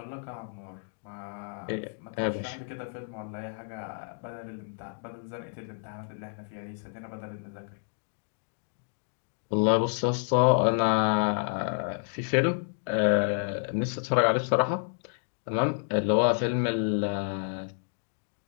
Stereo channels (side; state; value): right; silent; digital silence